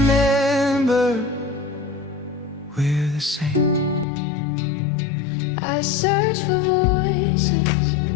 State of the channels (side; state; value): right; drops out; at 4.0 s